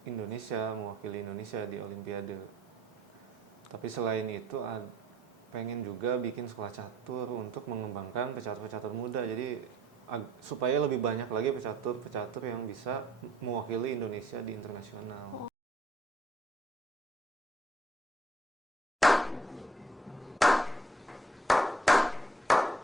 Indonesia, mewakili Indonesia di Olimpiade. Tapi selain itu pengen juga bikin sekolah catur untuk mengembangkan pecatur-pecatur muda. Jadi supaya lebih banyak lagi pecatur-pecatur yang bisa mewakili Indonesia di internasional.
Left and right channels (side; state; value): both; normal; correlation 0.63